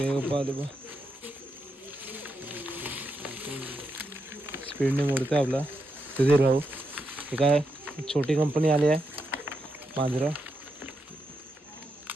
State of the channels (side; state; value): both; normal; correlation 0.83